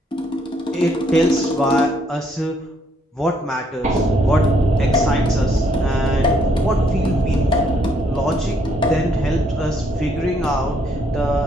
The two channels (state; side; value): normal; both; correlation 0.69